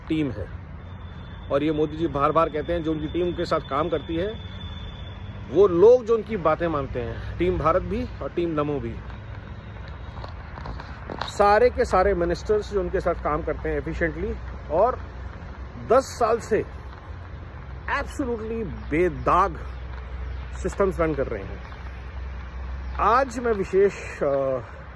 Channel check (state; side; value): identical; both; correlation 1.00